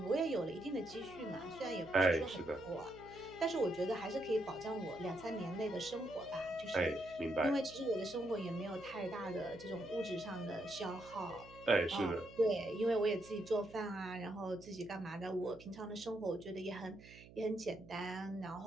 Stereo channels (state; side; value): noise; right; hum, 19 dB below the sound